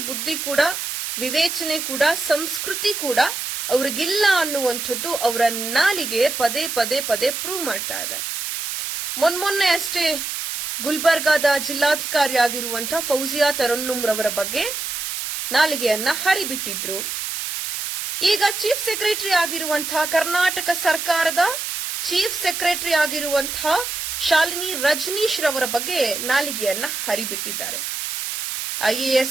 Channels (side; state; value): right; noise; hiss, 4 dB below the sound